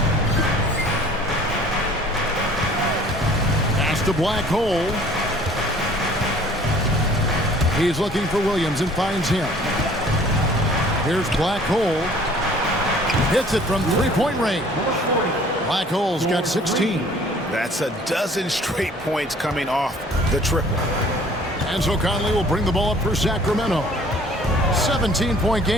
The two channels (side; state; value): both; normal; correlation 0.52